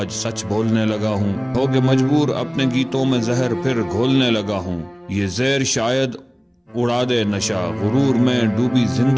سچ بولنے لگا ہوں، ہو کے مجبور اپنے گیتوں میں زہر پھر گھولنے لگا ہوں، یہ زہر شاید اڑا دے نشہ غرور میں ڈوبی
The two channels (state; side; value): identical; both; correlation 1.00